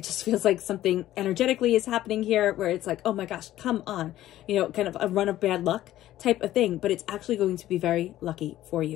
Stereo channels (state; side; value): quieter; right; 14.0 dB